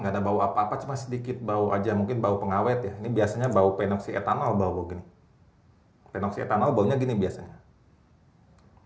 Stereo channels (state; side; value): identical; both; correlation 1.00